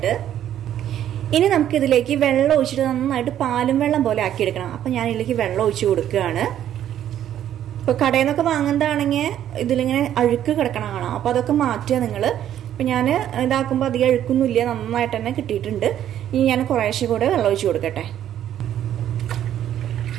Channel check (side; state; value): left; quieter; 10.9 dB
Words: ഇനി നമുക്ക് ഇതിലേക്ക് വെള്ളം ഒഴിച്ചിട്ട് നന്നായിട്ട് പാലും വെള്ളം പോലെ ആക്കിയെടുക്കണം. അപ്പൊ ഞാൻ ഇതിലേക്ക് വെള്ളം ഒഴിച്ചു കൊടുക്കുകയാണ്. ഇപ്പൊ കടയിൽ നിന്നൊക്കെ വാങ്ങുന്നതാണെങ്കിൽ ഇതിലിങ്ങനെ അഴുക്ക് കിടക്കണം കാണാം. അപ്പൊ അതൊക്കെ മാറ്റുക നിങ്ങൾ. അപ്പം ഞാൻ ഇതാക്കുമ്പോൾ അധികം അഴുക്കൊന്നുമില്ല, നന്നായിട്ട് തന്നെ കിട്ടിയിട്ടുണ്ട്. ഇനി ഞാൻ കുറേശ്ശെ കൂടെ വെള്ളം ഒഴിച്ച് കൊടുക്കട്ടെ.